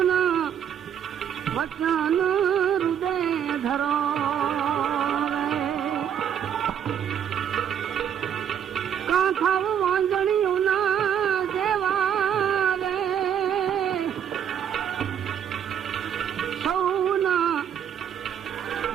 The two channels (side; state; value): left; quieter; 8.9 dB